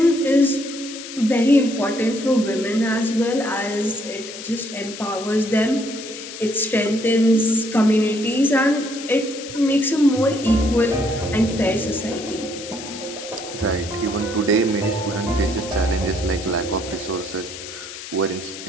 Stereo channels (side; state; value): left; noise; hiss, 12 dB below the sound